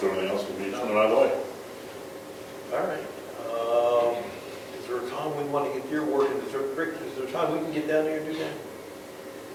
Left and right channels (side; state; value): both; identical; correlation 1.00